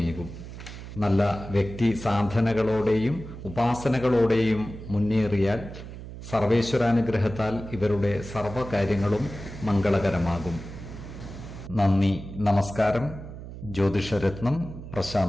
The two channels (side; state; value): right; noise; hum, 12 dB below the sound